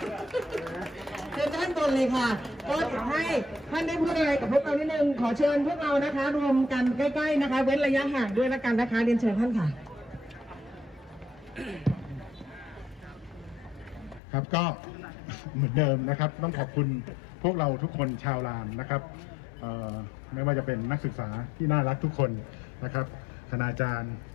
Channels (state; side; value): drops out; right; at 14.2 s